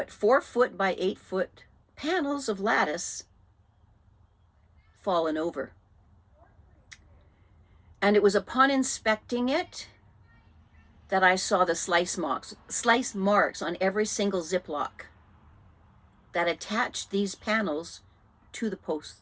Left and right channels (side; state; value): both; identical; correlation 1.00